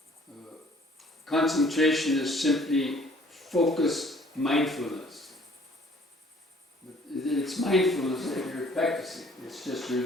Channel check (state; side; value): normal; both; correlation 0.57